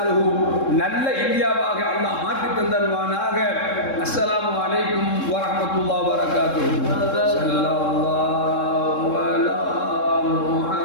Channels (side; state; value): right; late; 3.7 ms